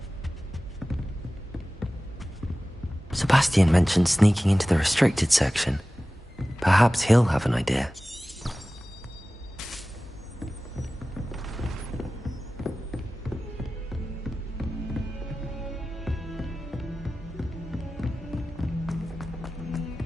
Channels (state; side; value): normal; both; correlation 0.96